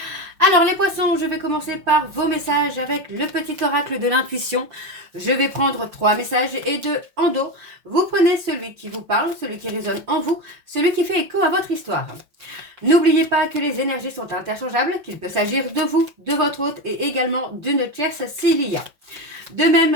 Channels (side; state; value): left; late; 5.7 ms